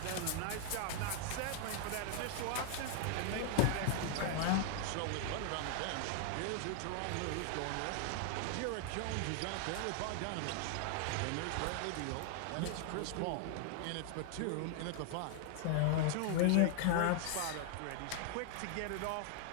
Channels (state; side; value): different; both; correlation 0.00